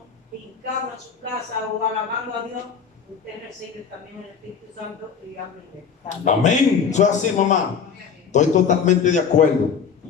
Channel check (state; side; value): quieter; right; 6.5 dB